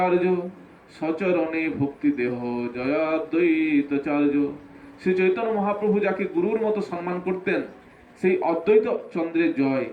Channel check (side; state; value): both; identical; correlation 1.00